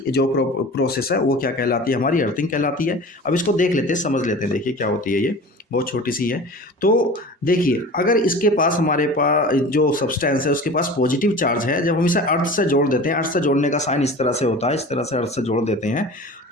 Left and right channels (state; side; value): normal; both; correlation 0.38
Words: जो प्रोसेस है वो क्या कहलाती है? हमारी अर्थिंग कहलाती है। अब इसको देख लेते हैं, समझ लेते हैं। देखिए क्या होती है, ये बहुत छोटी सी है। तो देखिए अगर इसके पास, हमारे पास जो सब्सटेंस है उसके पास पॉजिटिव चार्ज है, जब हम इसे अर्थ से जोड़ देते हैं, अर्थ से जोड़ने का साइन इस तरह से होता है, इस तरह से अर्थ से जोड़ देते हैं,